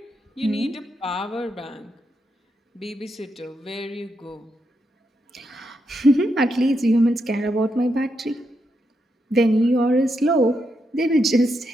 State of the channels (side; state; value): both; normal; correlation 0.82